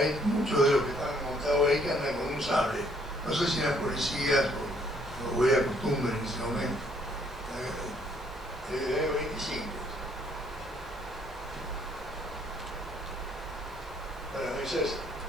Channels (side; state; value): both; normal; correlation 0.65